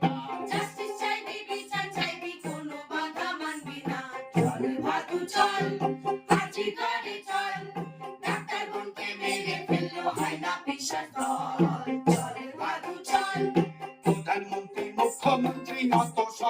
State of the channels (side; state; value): both; identical; correlation 1.00